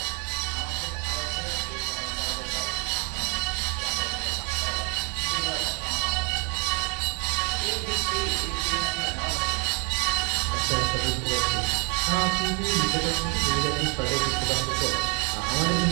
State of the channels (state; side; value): quieter; left; 34.9 dB